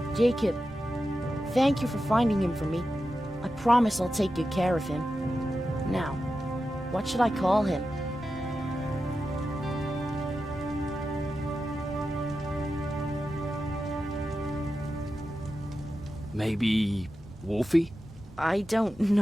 Jacob, thank you for finding him for me. I promise I'll take good care of him. Now, what should I call him? Maybe Wolfie? I don't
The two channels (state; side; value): normal; both; correlation 0.91